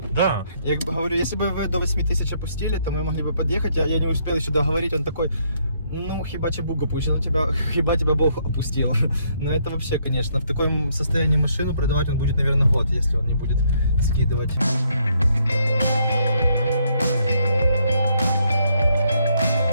Да. Я как бы говорю, если бы вы до 8000 опустили, то мы могли бы подъехать, я не успел еще договорить, он такой, ну, хиба тебе Бог опустил, хиба тебя Бог опустил. Но это вообще, конечно, в таком состоянии машину продавать он будет, наверное, год, если он не будет скидывать.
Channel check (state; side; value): inverted; both; correlation -0.71